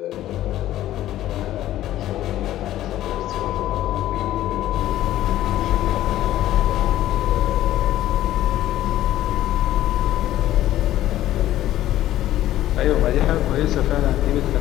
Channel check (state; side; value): quieter; right; 13.7 dB